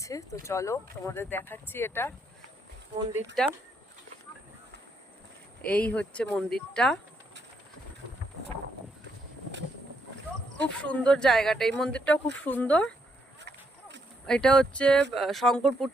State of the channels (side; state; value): both; normal; correlation 0.75